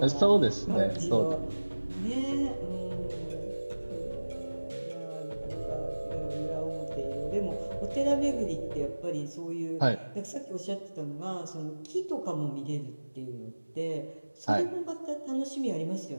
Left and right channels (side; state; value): both; inverted; correlation -1.00